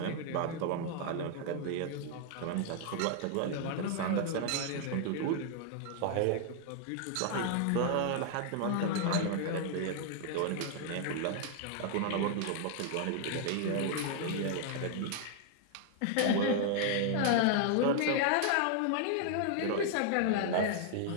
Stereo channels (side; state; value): both; different; correlation 0.00